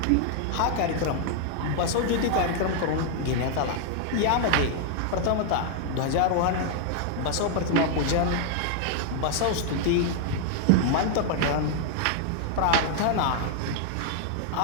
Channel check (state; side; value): different; both; correlation 0.00